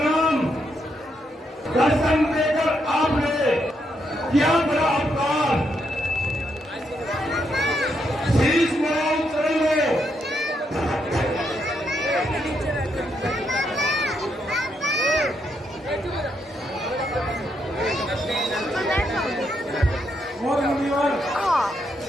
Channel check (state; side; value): normal; both; correlation 0.78